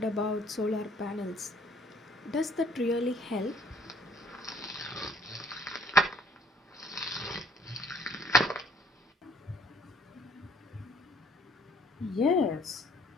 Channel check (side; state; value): both; normal; correlation 0.60